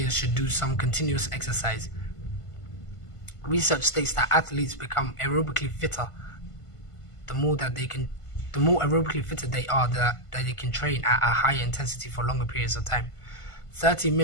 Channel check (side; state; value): right; late; 1.5 ms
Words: should do some continuous exercise. Research states that athletes become aerobically fitter the more aerobically fitter they are, that they can train at a higher intensity for longer periods of time. 30